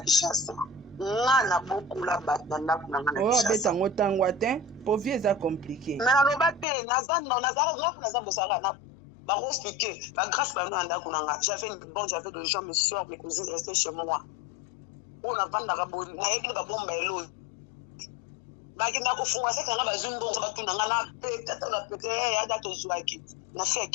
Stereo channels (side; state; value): right; drops out; at 6.7 s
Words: On a beaucoup là-bas dans la Kinshasa. Oh, bête pour vieux ça compliqué. Mais on a pas Nazan Bosara na ba expliquer. La grâce par nous anda kunanga. J'avais des gens me soeur mes cousines restaient chez moi. On a pas d'araboni. Na yeki ba bomba elo. Ba kinda ko funga ça kana ba zumbo ba tunanga na pete ya da to zuaki. Na fait